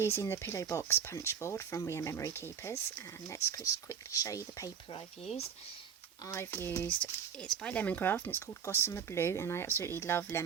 the pillow box punch board from We Are Memory Keepers, and let's just quickly show you the paper I've used. It's by Lemoncraft and it's called Gossamer Blue, and I absolutely love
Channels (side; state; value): left; quieter; 7.7 dB